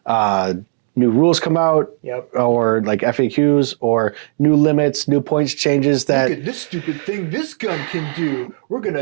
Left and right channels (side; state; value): left; silent; 68 dB below the other